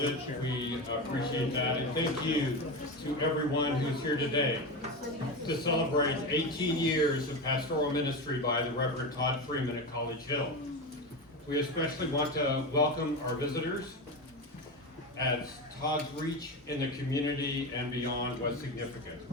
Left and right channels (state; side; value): normal; both; correlation 0.20